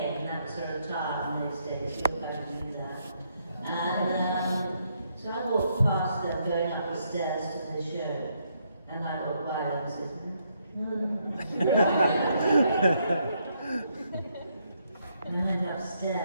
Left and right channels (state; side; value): inverted; both; correlation -0.75